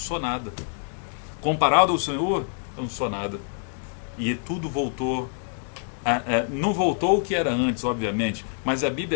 nada. Comparado ao Senhor, eu não sou nada. E tudo voltou. Não voltou o que era antes, obviamente, mas a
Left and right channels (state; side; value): silent; right; 59 dB below the other